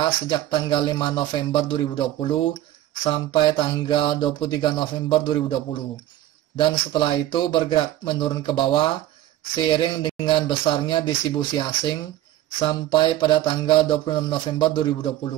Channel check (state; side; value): quieter; left; 13.8 dB